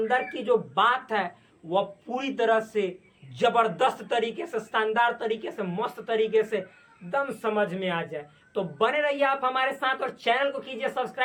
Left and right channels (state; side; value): identical; both; correlation 1.00